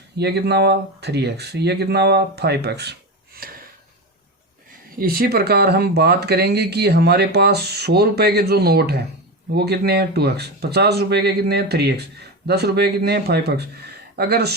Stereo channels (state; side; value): normal; both; correlation 0.19